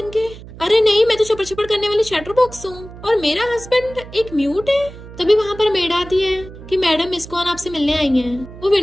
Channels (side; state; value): right; noise; hum, 16 dB below the sound